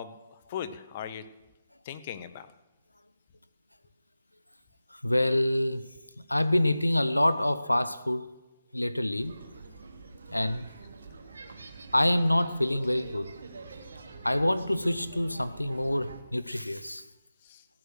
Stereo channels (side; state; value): both; inverted; correlation -0.97